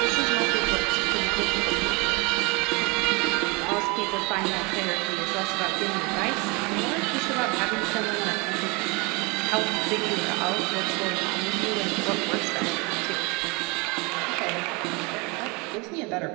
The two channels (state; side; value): quieter; left; 28.1 dB